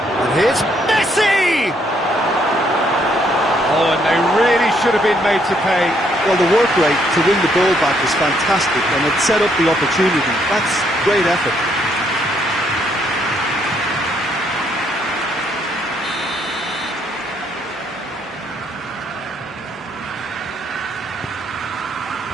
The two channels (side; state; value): both; normal; correlation 0.71